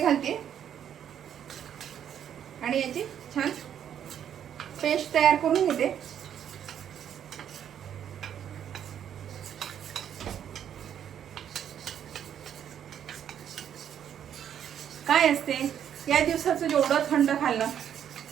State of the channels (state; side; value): quieter; left; 9.4 dB